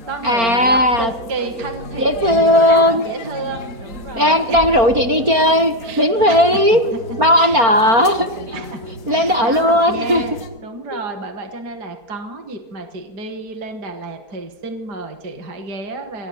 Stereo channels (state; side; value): late; left; 4.4 ms